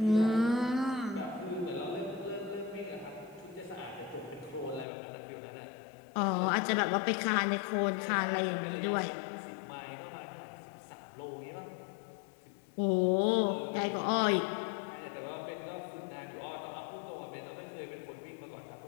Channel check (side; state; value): right; drops out; at 4.9 s